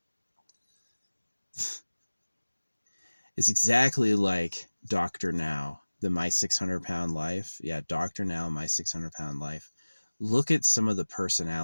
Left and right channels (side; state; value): both; inverted; correlation -1.00